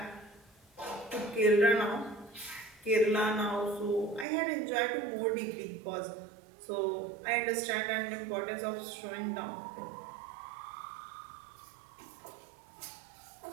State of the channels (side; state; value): left; drops out; at 4.2 s